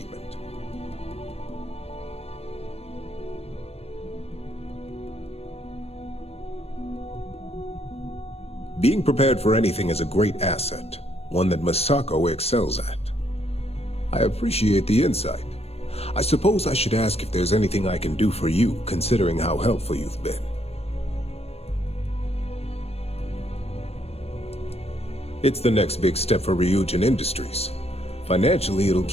Being prepared for anything is a great asset, one that Masako excels at. I appreciate the insight. I suppose I should ask if there's anything I can do for you, considering how helpful you've been. It's the next big step for Ryujin Industries. Financially, it'll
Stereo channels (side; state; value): right; late; 0.29 ms